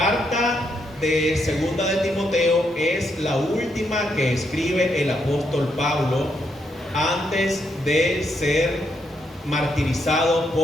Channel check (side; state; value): both; normal; correlation 0.78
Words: de segunda de Timoteo es la última que escribe el apóstol Pablo antes de ser martirizado